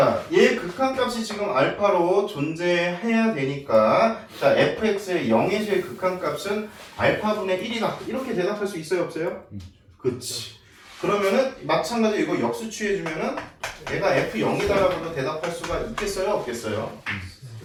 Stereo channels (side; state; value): both; identical; correlation 1.00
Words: 얘 극한값이 지금 알파로 존재해야 되니까 자, fx의 0에서의 극한값은 알파분의 1이다. 이렇게 대답할 수 있어요, 없어요? 그치. 그러면은 마찬가지로 이거 역수 취해주면은 얘가 f0이다라고도 대답할 수가 있겠어요, 없겠어요?